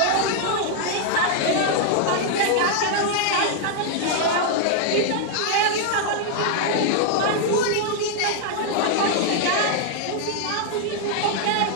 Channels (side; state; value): both; different; correlation 0.00